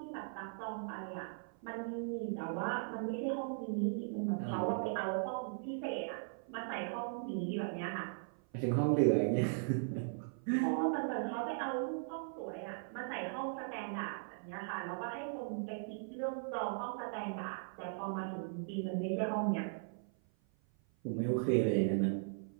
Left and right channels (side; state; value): left; silent; 52 dB below the other